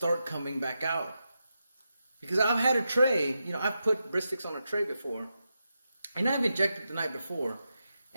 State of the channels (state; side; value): inverted; both; correlation -0.87